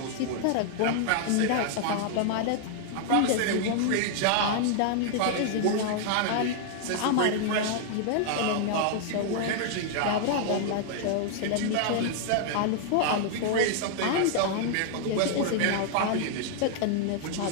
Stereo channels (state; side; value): different; both; correlation 0.00